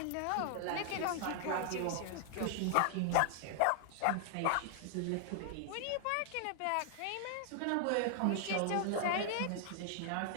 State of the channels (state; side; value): different; both; correlation 0.00